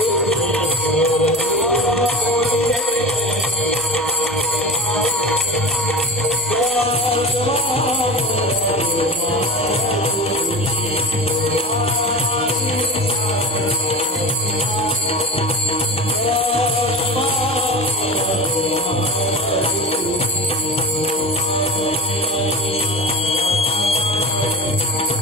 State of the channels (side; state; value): both; normal; correlation 0.30